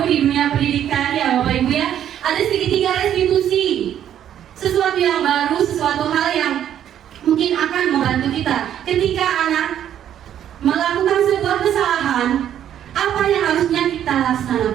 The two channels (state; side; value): quieter; left; 10.4 dB